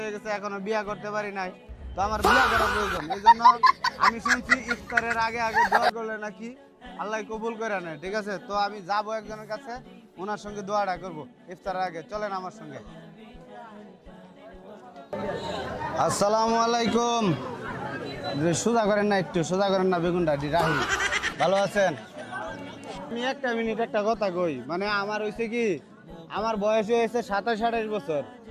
গেছে, এখনো বিয়া করতে পারি নাই। তো আমার বিয়া করা প্রয়োজন, এই জন্য আমি শুনছি ইফতারের আগে আগে দোয়া করলে নাকি আল্লাহ কবুল করে নেয়। ঠিক আছে, তো আমি যাবো একজনের কাছে, ওনার সঙ্গে দোয়াটা করবো ইফতারের আগে। চলেন আমার সঙ্গে। আসসালামু আলাইকুম। সোজা করেন না, একটু সোজা করেন না, বেগুনটা রাহি। ভালো আছেন? আমি একটা মিনিট একটা কথা কই, মানে আমার হয়েছে কি, আমার বয়স হয়েছে 27-28 বছর,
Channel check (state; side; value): identical; both; correlation 1.00